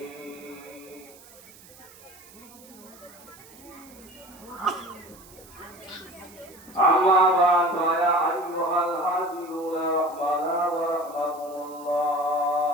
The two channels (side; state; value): right; noise; hiss, 22 dB below the sound